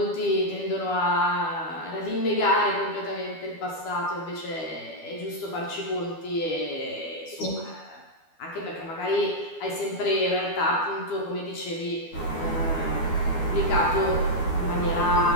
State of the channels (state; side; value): late; right; 12 ms